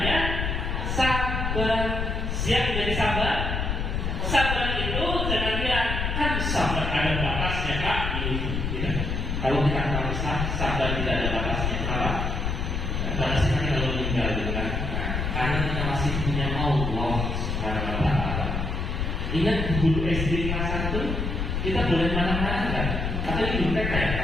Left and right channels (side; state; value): left; noise; rumble, 1 dB below the sound